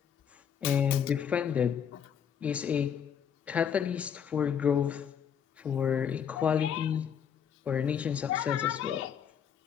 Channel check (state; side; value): quieter; right; 8.0 dB